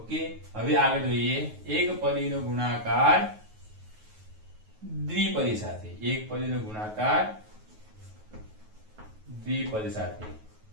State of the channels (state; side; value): late; left; 9.4 ms